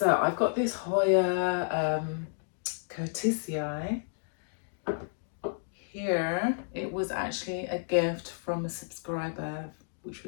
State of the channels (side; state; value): right; silent; digital silence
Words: I've got this Hoya Curtisii here. It was actually a gift from a subscriber, which